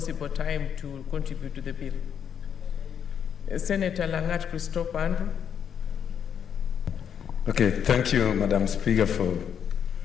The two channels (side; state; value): right; quieter; 8.2 dB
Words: time to contribute to the bill. Senator Langat Christopher Andrew. Okay, thank you, Madam Speaker, for